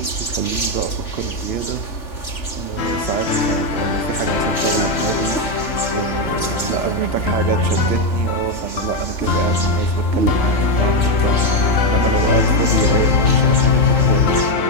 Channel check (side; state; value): right; late; 3.4 ms